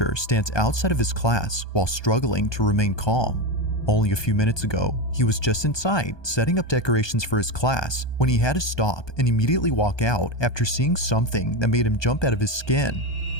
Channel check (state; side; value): late; right; 1.2 ms